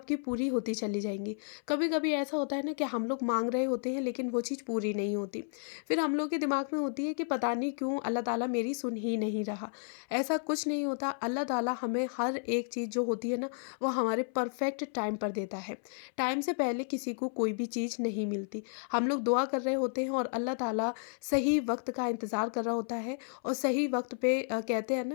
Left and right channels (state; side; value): silent; right; 56 dB below the other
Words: पूरी होती चली जाएंगी। कभी कभी ऐसा होता है ना कि हम लोग मांग रहे होते हैं लेकिन वो चीज़ पूरी नहीं होती। फिर हम लोग के दिमाग में होती है कि पता नहीं क्यों अल्लाह ताला मेरी सुन ही नहीं रहा। ऐसा कुछ नहीं होता। अल्लाह ताला हमें हर एक चीज़ जो होती है ना, वो हमारे परफेक्ट टाइम पर देता है। टाइम से पहले किसी को कोई भी चीज़ नहीं मिलती। हम लोग दुआ कर रहे होते हैं और अल्लाह ताला सही वक्त का इंतज़ार कर रहा होता है और सही वक्त पे कहते हैं